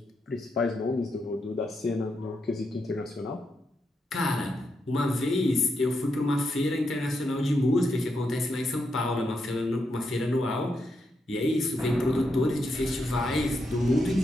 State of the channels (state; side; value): normal; both; correlation 0.83